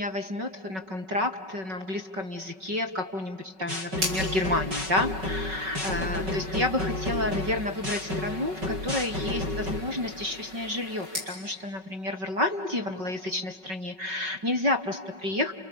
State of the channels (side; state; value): left; late; 5.3 ms